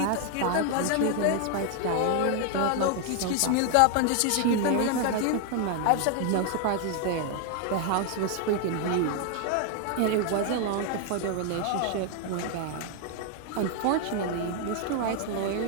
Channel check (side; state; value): both; different; correlation 0.00